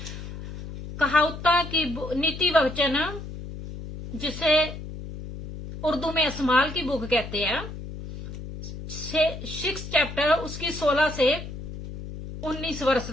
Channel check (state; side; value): noise; left; hum, 10 dB below the sound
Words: कहावता की नीति वचन, जिसे उर्दू में अस्माल की बुक कहते हैं, 6 चैप्टर उसकी 16 से 19 वर्ष